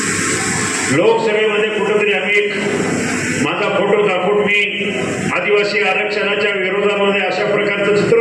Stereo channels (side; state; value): both; identical; correlation 1.00